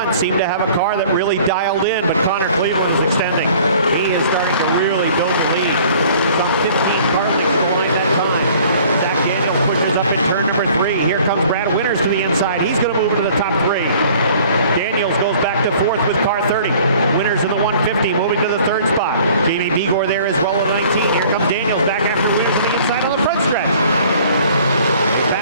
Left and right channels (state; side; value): inverted; both; correlation -0.52